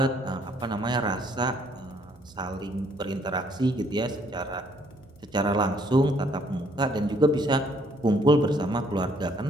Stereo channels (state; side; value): noise; right; hum, 27 dB below the sound